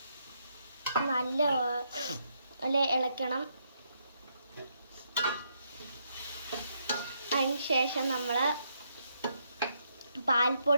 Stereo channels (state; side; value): inverted; both; correlation -0.76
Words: നല്ലപോലെ ഇളക്കണം. അതിനുശേഷം നമ്മൾ